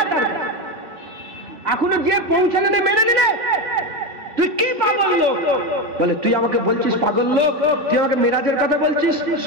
তার এখনো যে পৌঁছালে না, মেনে নিলে, তুই কি পাগল লোক? বলে তুই আমাকে বলছিস পাগল লোক, তুই আমাকে মেরাজের কথা বলছিস?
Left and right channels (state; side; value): late; left; 3.5 ms